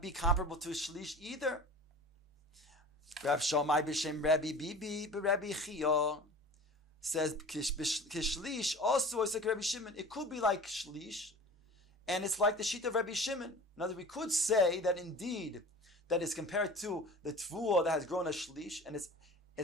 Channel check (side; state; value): both; normal; correlation 0.39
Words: be comparable to a shlish either. Rav Shammai b'shem Rabbi Bibi b'Rabbi Chia says kishlish also is like Rabbi Shimon. It could be like shlish, and it's like the sheet of Rabbi Shimon. In other words, we could say that indeed that is compared to the tvua that has grown a shlish, and